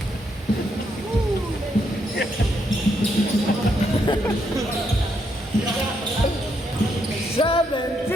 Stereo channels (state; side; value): normal; both; correlation 0.77